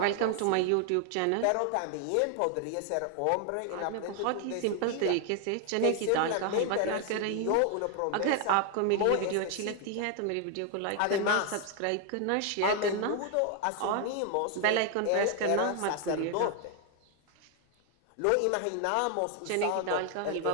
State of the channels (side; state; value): both; different; correlation 0.00